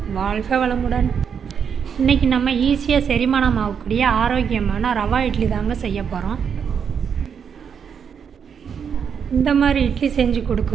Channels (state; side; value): quieter; left; 7.2 dB